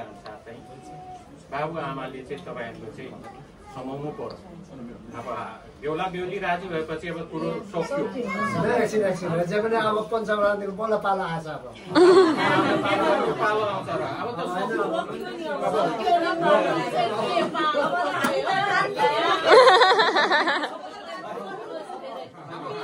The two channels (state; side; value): identical; both; correlation 1.00